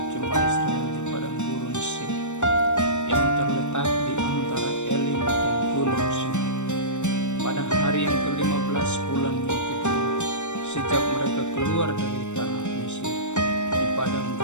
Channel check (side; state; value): right; late; 0.84 ms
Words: jemaah Israel di padang gurun Sin yang terletak di antara Elim dan gunung Sinai pada hari yang ke-15 bulan yang kedua sejak mereka keluar dari tanah Mesir di padang